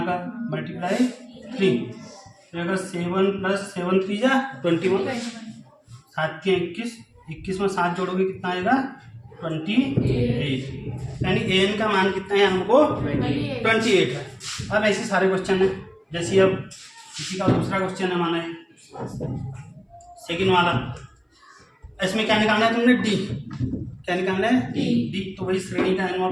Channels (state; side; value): identical; both; correlation 1.00